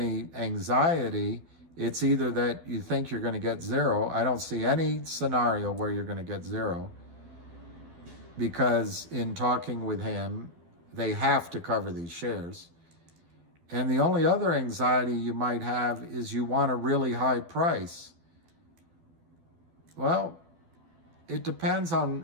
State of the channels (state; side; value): late; left; 12 ms